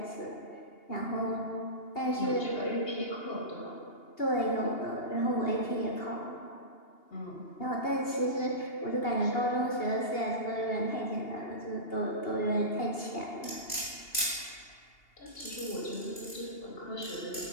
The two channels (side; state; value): right; late; 2.8 ms